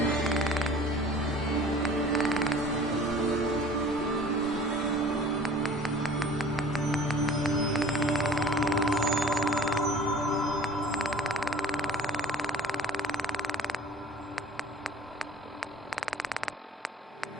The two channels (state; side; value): normal; both; correlation 0.46